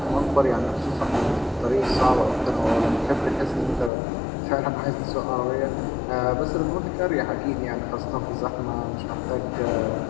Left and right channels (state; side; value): drops out; right; at 3.9 s